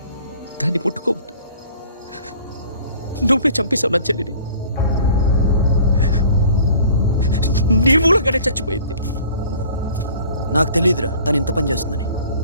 దాన్ని ముట్టుకోవద్దు. నువ్వే చంపేశావు నా చెల్లిని. నీ మూలంగానే చచ్చిపోయింది. నాకు తెలియదురా తను ఇంత పని చేస్తుందని.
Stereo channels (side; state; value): both; inverted; correlation -0.49